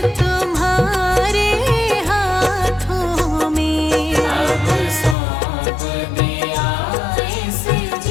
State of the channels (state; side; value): drops out; right; at 5.2 s